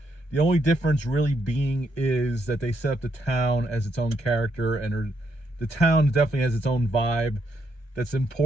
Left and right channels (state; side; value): late; right; 1.3 ms